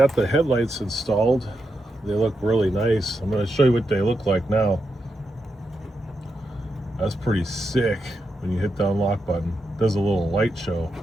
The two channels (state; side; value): normal; both; correlation 0.85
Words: the headlights installed. They look really nice. I'm going to show you what they look like now. That's pretty sick. When you hit the unlock button, it does a little light show